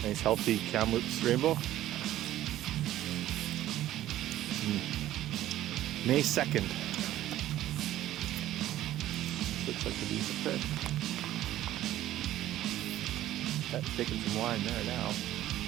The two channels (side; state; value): left; quieter; 13.7 dB